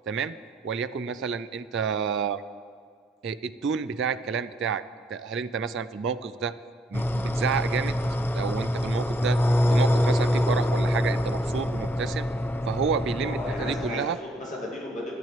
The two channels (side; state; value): both; normal; correlation 0.68